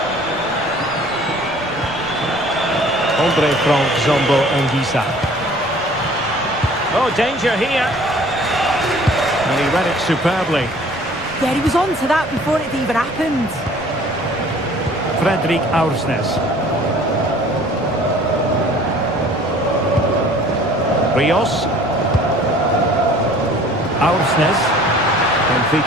Andre Frank Zambo Anguissa. Oh, danger here. And he read it superbly. Yeah, he was on to that before it even happened. Fredrik Aursnes. Rios. Aursnes.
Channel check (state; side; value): noise; left; rumble, 25 dB below the sound